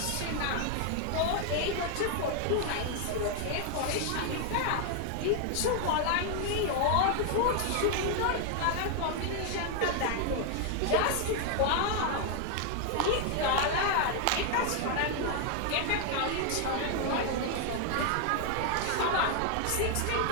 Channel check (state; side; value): different; both; correlation 0.00